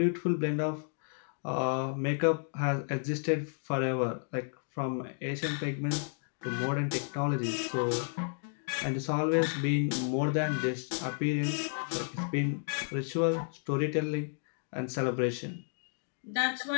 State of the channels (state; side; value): silent; right; digital silence